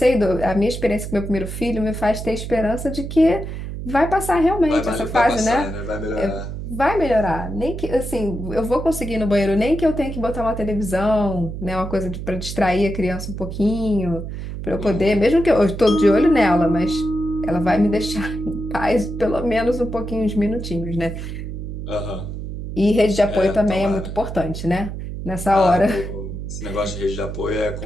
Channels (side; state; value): right; noise; hum, 7 dB below the sound